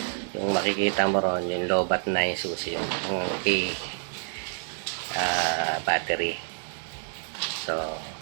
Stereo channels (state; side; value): silent; left; digital silence